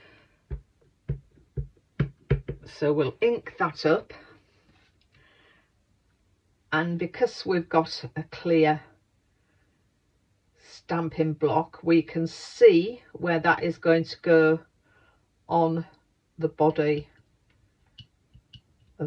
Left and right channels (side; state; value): both; identical; correlation 1.00